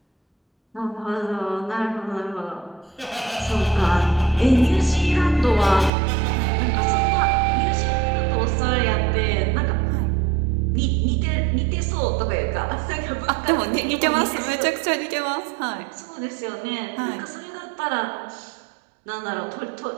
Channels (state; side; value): drops out; left; at 5.9 s